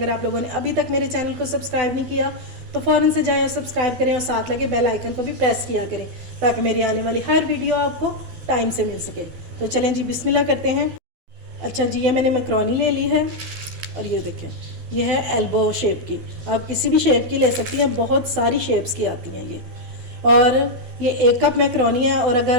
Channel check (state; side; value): late; left; 12 ms